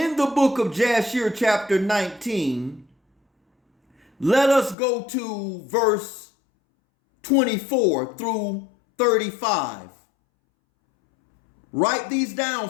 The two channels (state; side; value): drops out; right; at 4.8 s